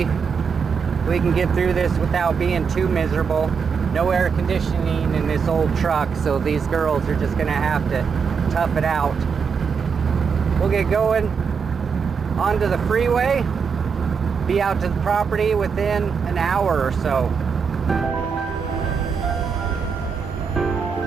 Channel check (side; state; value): left; quieter; 6.0 dB